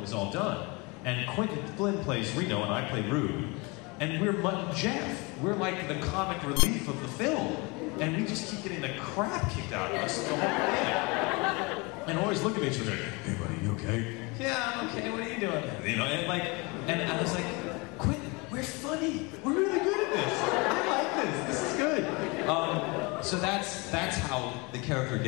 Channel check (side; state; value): right; quieter; 27.5 dB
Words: was all done. And Quentin Flynn plays Reno and I play Rude. And we're Mutt and Jeff. We're like the comic relief of the film. And we just keep getting the crap kicked out of us the whole thing. And always look at each other, hey buddy, you okay? Yeah, I'm okay, what are you doing? You know, and I was like, Quentin, we're funny. We're really good at this. I like this. This is good. So that's how the character